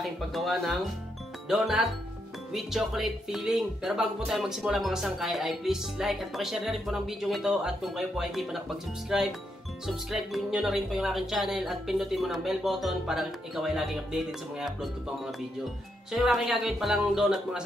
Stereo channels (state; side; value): normal; both; correlation 0.80